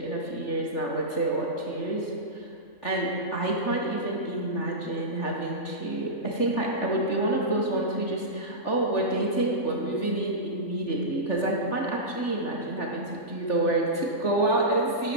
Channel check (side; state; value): right; late; 3.4 ms